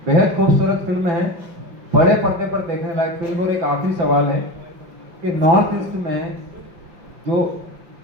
बेहद खूबसूरत फिल्म है, बड़े पर्दे पर देखने लायक फिल्म। और एक आखिरी सवाल है कि नॉर्थ ईस्ट में जो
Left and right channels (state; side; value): late; left; 5.6 ms